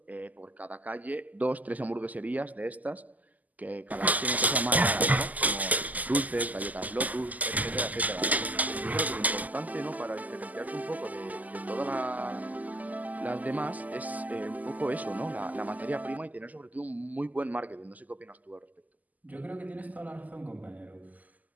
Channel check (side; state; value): left; late; 0.079 ms